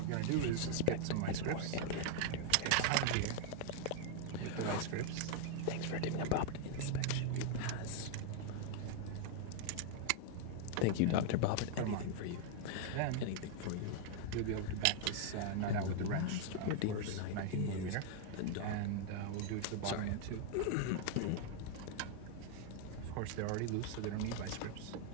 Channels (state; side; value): different; both; correlation 0.00